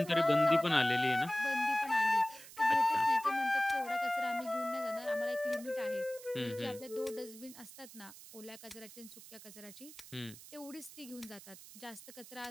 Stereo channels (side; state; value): right; noise; hiss, 17 dB below the sound